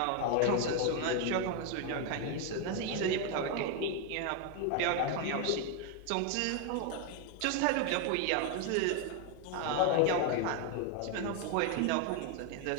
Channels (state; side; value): different; both; correlation 0.01